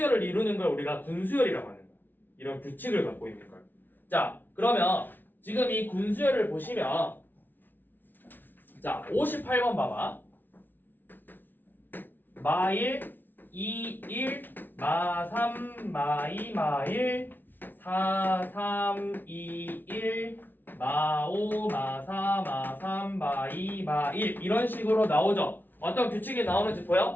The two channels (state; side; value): late; right; 0.091 ms